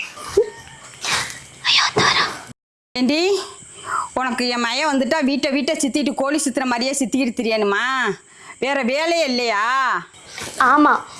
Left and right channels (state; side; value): identical; both; correlation 1.00